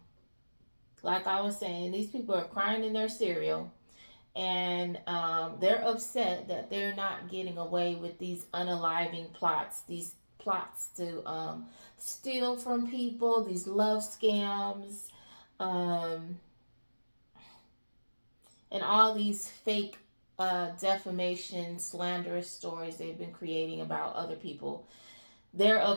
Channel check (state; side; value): inverted; both; correlation -1.00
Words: I was saying, these people are crying in their cereal, and they're upset that they're not getting away with these unaliving plots, these plots to steal from people, these love scams, um, and all these fake defamation, slanderous stories they've been creating about other people. They're